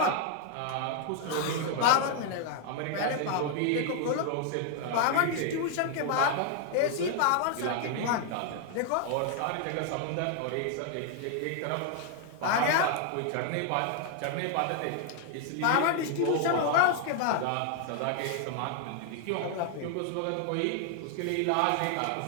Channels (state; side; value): different; both; correlation 0.00